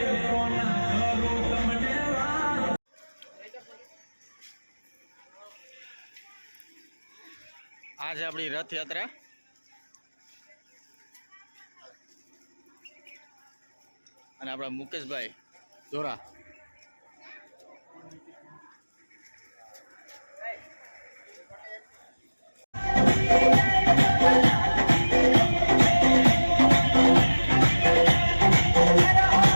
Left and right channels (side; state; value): both; inverted; correlation -1.00